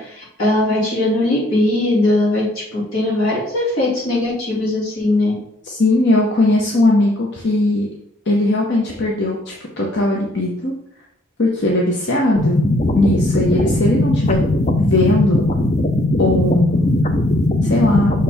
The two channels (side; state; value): both; normal; correlation 0.64